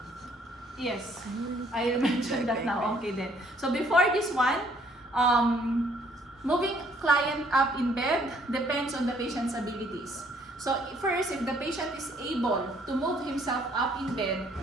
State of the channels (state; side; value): normal; both; correlation 0.64